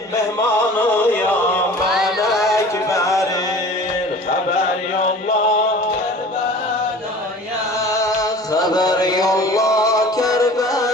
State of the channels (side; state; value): both; normal; correlation 0.43